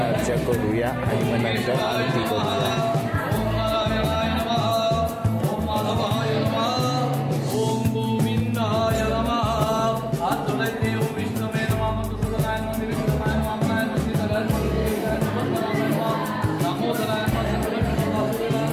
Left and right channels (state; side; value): identical; both; correlation 1.00